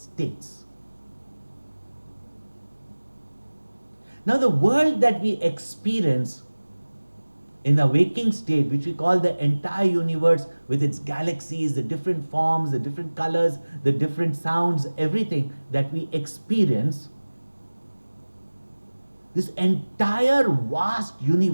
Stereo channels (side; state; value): both; inverted; correlation -1.00